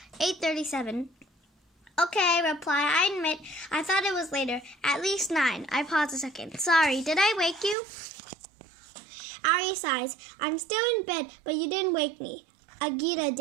8:37. Okay, reply. I admit, I thought it was later. At least 9. I pause a second. Sorry, did I wake you? Ari sighs. I'm still in bed, but you didn't wake me. Agita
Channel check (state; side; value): drops out; left; at 7.8 s